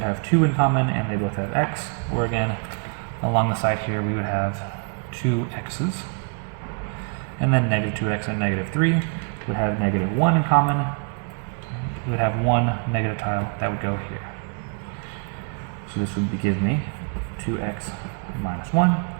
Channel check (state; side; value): quieter; left; 38.3 dB